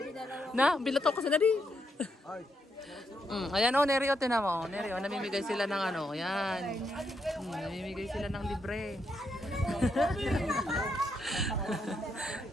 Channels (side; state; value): both; normal; correlation 0.79